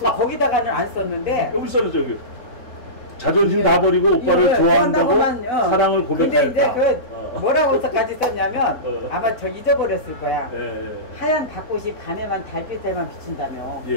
안 썼는데 여기 써놨죠 여기. 자존심 다 버리고 오빠를 좋아한다고 사랑을 고백했다. 근데 이제 뭐라고서까지 썼냐면 아마 저 잊어버렸을 거야. 하얀 닭꽃이 밤에만 달빛에만 비춘다며.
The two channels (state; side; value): late; right; 4.0 ms